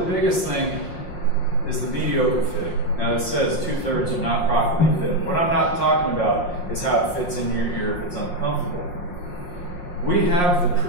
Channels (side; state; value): right; late; 5.6 ms